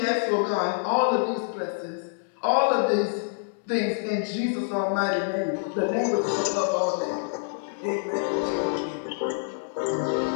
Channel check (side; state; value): right; silent; 61 dB below the other